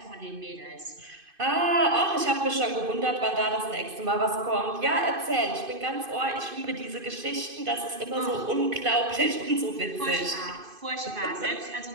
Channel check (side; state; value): left; late; 2.5 ms